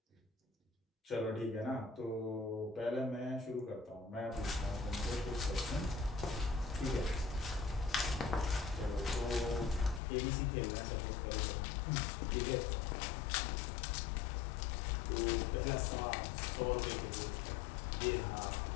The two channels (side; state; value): right; drops out; at 10.0 s